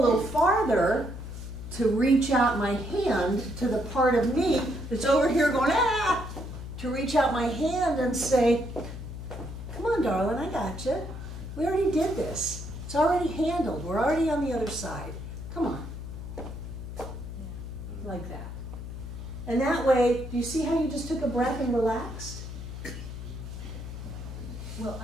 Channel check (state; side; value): noise; left; hum, 9 dB below the sound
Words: farther to reach out my hand to the part of me that's over here going, ah, to reach out my hand and say, come on, darling, I got you. We already did this. It's already handled. We're already on the other side. Come on. Like that. And that way, do you see how you just took a breath and relaxed? Well,